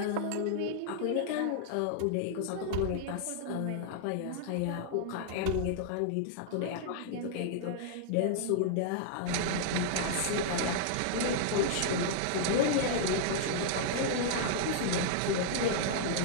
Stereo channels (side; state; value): both; different; correlation -0.01